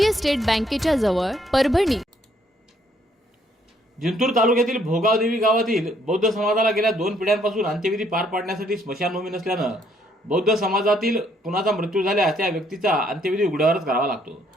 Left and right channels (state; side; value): normal; both; correlation 0.68